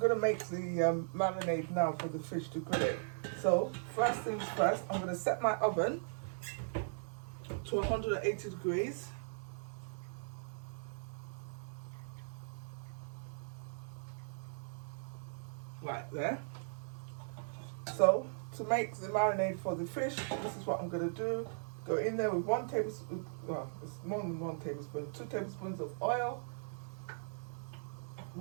to make the marinade now for the fish to grill it. So, first things first, I'm going to set my oven to 180 degrees. Right there. So, to make the marinade for the fish, this is what I'm going to do. Go in there with 1 tablespoon, well, it's more than 1 tablespoon, 2 tablespoons of oil,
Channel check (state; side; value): silent; left; digital silence